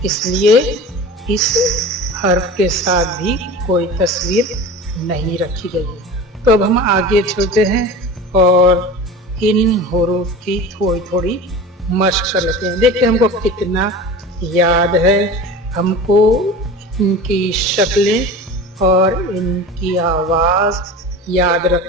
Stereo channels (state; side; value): normal; both; correlation 0.34